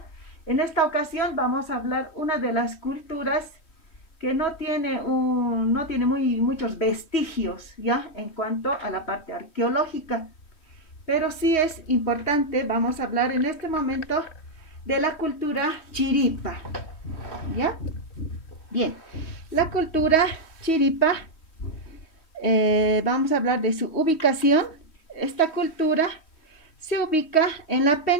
En esta ocasión vamos a hablar una de las culturas que no tiene muchos vestigios, ¿ya? En cuanto a la parte arqueológica. Pero sí es importante, vamos a hablar en este momento de la cultura chiripa, ¿ya? Bien, la cultura chiripa, vamos a hablar de su ubicación. Esta cultura se ubica en la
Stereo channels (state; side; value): late; right; 3.1 ms